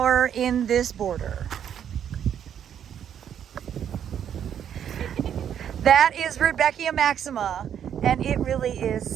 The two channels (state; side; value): quieter; left; 9.1 dB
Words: in this border? That is Rudbeckia maxima, and it really